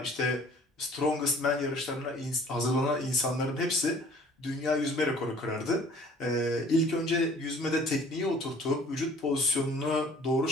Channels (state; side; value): normal; both; correlation 0.52